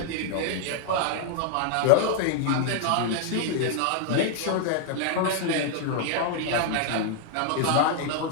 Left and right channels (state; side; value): different; both; correlation 0.00